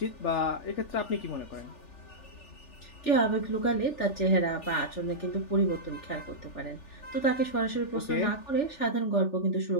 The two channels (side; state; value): right; late; 3.4 ms